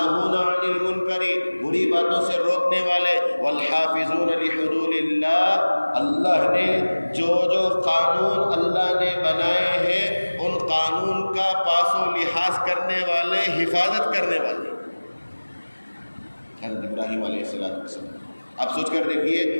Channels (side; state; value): both; inverted; correlation -1.00